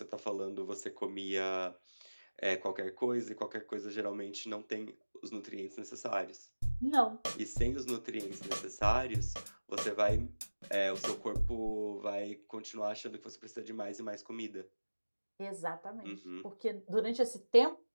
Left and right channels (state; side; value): inverted; both; correlation -1.00